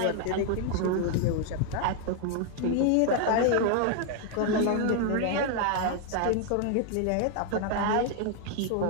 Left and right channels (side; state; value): both; different; correlation 0.00